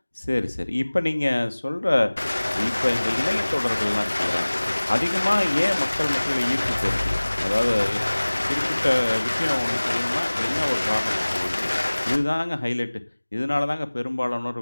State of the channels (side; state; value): both; inverted; correlation -1.00